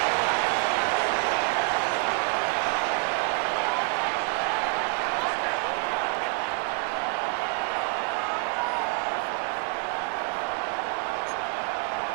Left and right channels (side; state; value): left; quieter; 33.4 dB